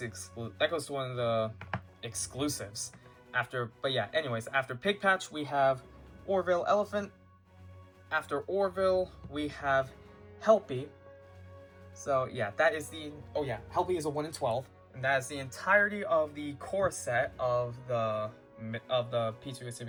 goes to one of the exclusives. After Pig Patch, we have Orville Elephant. After Orville, we have Helpy. So yeah, that is Helpy is a 1 in 12, and that is the entirety of the core set of the Pizzeria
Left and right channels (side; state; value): both; identical; correlation 1.00